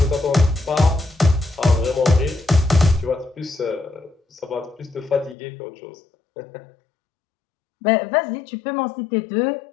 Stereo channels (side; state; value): right; drops out; at 5.4 s